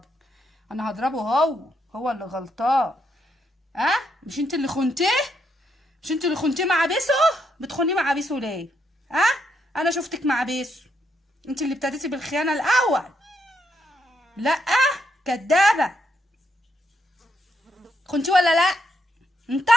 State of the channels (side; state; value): both; normal; correlation 0.78